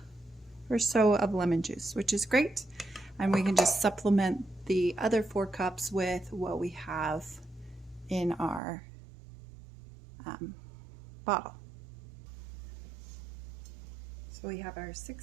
or so of lemon juice, which is great. And we can just supplement the other 4 cups with what we have in our bottle. So we have our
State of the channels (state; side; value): drops out; left; at 8.6 s